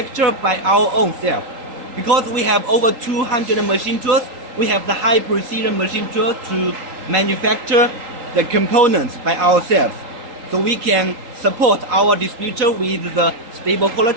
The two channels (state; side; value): late; left; 3.8 ms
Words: by our own self. Because we have over 200 machine tools, we have the high precision machine tool to manufacture the components by ourselves. So we can support our distributor with the stable